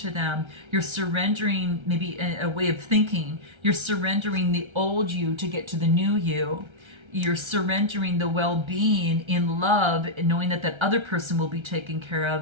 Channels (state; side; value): late; left; 1.3 ms